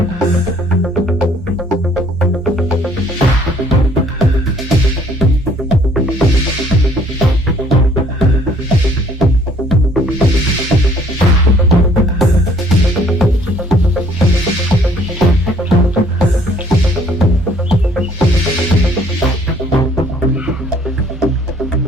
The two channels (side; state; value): both; normal; correlation 0.60